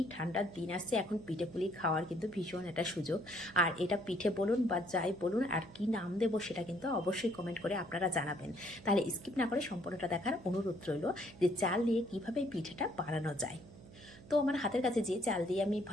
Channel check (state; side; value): noise; right; hum, 19 dB below the sound